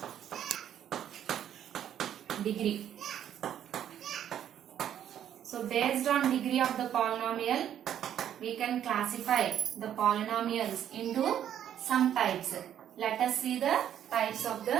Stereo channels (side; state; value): left; quieter; 10.2 dB